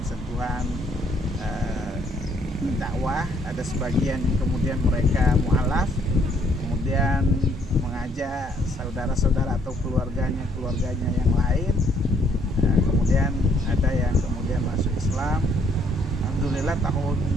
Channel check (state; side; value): normal; both; correlation 0.67